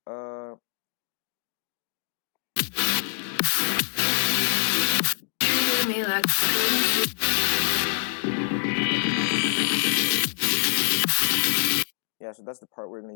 Me like yeah, so that's the part we're going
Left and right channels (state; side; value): silent; right; digital silence